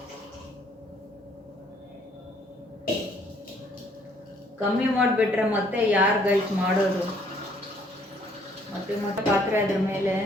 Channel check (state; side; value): normal; both; correlation 0.64